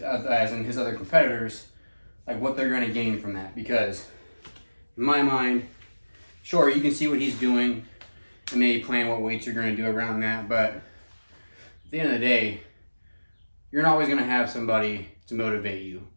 in his other competitors, like what they're going to gain from that. Because in my mind, sure, you can see what he's doing and maybe plan what weights you're going to do around that, but at the end of the day, you're not always going to have somebody to motivate you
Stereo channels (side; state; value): both; inverted; correlation -1.00